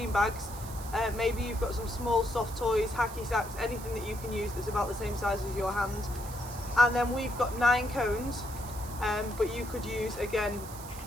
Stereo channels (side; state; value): right; noise; hiss, 14 dB below the sound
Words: bags. Maybe you've got some small soft toys, hacky sacks, anything that you can use that's about the same size as your hand. And then we've got 9 cones, but you could use, again,